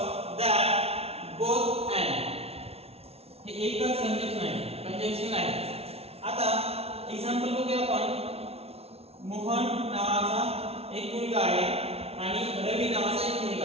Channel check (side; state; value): left; late; 0.30 ms